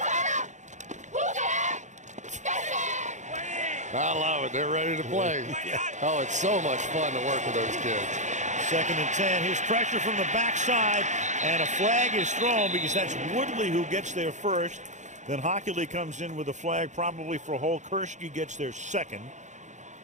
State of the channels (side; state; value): left; late; 0.35 ms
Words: I love it. They're ready to play. Oh, it's so much fun to work with those kids. 2nd and 10. Here's pressure from the backside, and a flag is thrown because that's Woodley who gets there first. Then Hockley comes in with a flag, probably for a hole. Kursky gets there second.